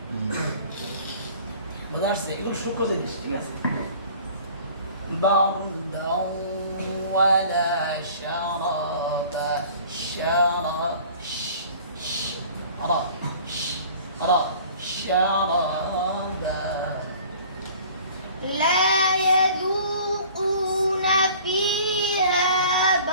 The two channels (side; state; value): both; inverted; correlation -0.48